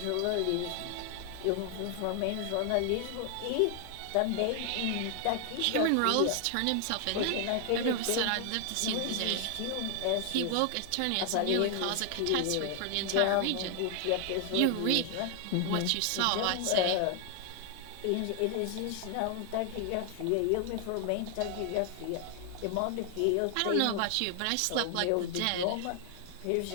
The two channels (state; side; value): different; both; correlation 0.00